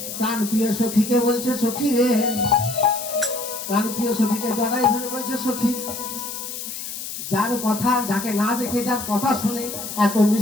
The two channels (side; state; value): left; noise; hiss, 8 dB below the sound